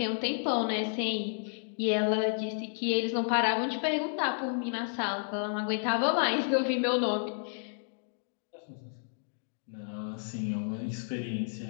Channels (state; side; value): silent; right; digital silence